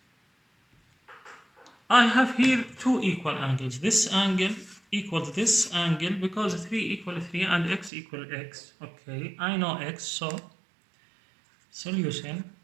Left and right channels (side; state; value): left; drops out; at 7.9 s